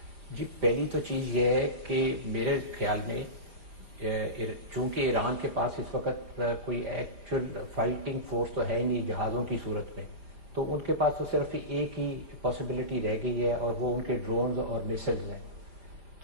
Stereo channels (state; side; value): late; left; 4.8 ms